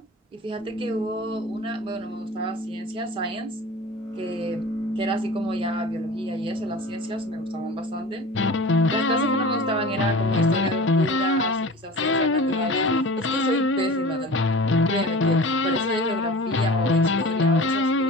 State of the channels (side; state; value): both; normal; correlation 0.38